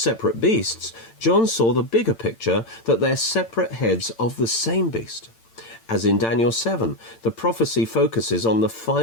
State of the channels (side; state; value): right; late; 8.9 ms